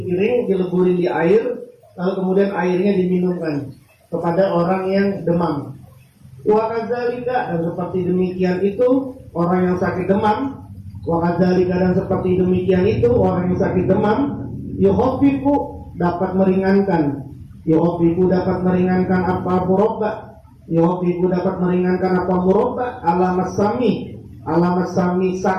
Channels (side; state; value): both; identical; correlation 1.00